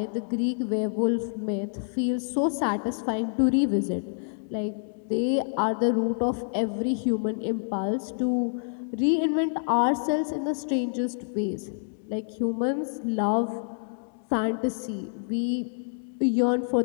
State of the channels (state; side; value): silent; right; digital silence